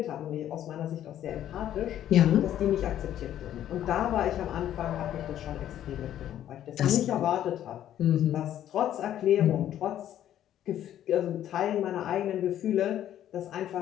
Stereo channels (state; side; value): quieter; right; 11.4 dB